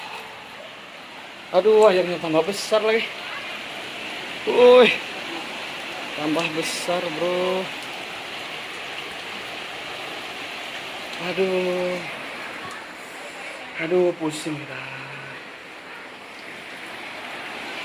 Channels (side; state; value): both; identical; correlation 1.00